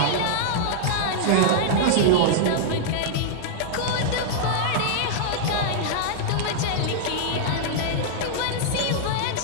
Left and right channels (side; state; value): both; different; correlation -0.01